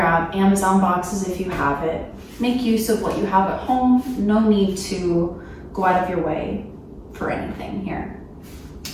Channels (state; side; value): identical; both; correlation 1.00